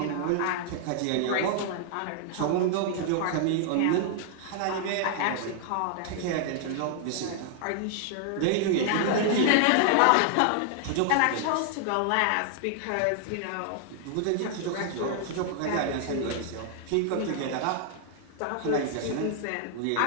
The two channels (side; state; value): both; different; correlation 0.00